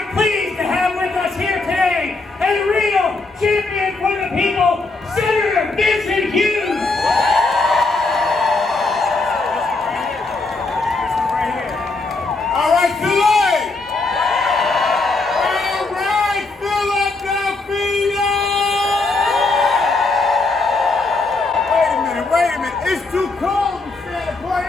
pleased to have with us here today a real champion for the people, Senator Vincent Hughes. All right, Philly! All right, Philadelphia! Wait a minute. It's too cold to stand apart.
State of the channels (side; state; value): right; quieter; 3.5 dB